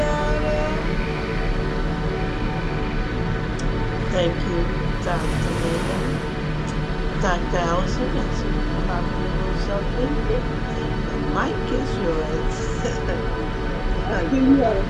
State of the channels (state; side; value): identical; both; correlation 1.00